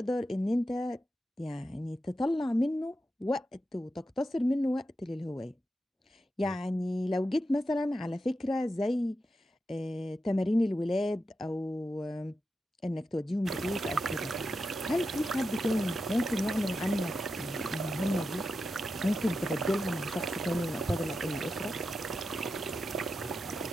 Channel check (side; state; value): both; normal; correlation 0.89